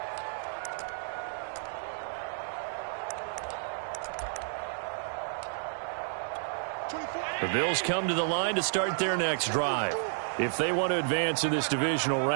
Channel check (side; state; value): left; silent; digital silence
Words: The Bills come to the line to start their next drive. If they want to advance in this divisional